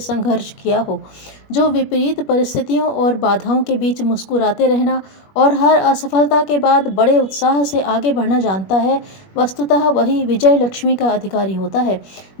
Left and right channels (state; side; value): late; right; 21 ms